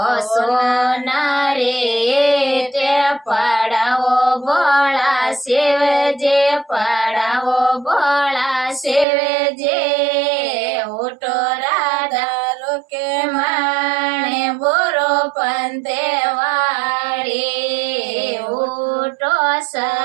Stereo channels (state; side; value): drops out; left; at 9.1 s